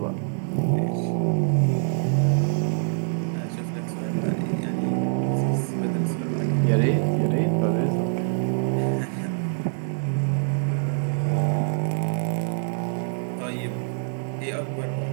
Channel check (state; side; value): silent; left; digital silence